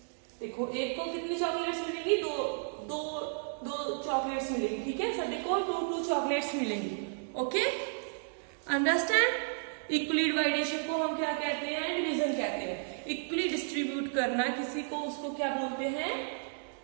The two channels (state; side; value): silent; left; digital silence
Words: देखो एक को कितनी चॉकलेट्स मिलेंगी? दो चॉकलेट्स मिलेंगी. ठीक है, सभी को 2 चॉकलेट्स मिलेंगी. Okay, understand? इक्वली डिवाइडेशन को हम क्या कहते हैं? डिवीजन कहते हैं. इक्वली डिस्ट्रीब्यूट करना किसी को, उसको क्या बोलते हैं?